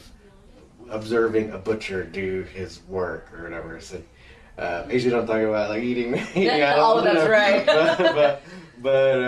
observing a butcher do his work or whatever. So usually don't talk about like eating animals. Oh, that's right.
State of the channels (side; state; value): both; identical; correlation 1.00